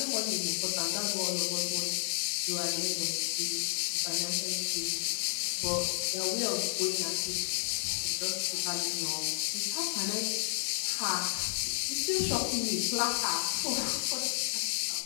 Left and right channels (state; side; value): silent; right; digital silence